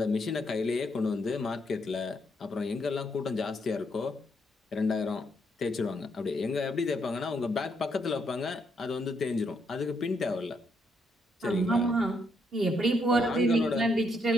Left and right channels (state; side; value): normal; both; correlation 0.75